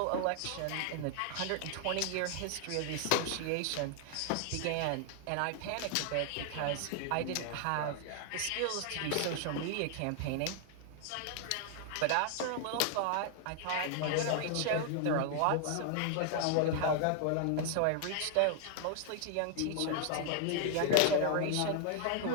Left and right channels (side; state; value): both; different; correlation 0.00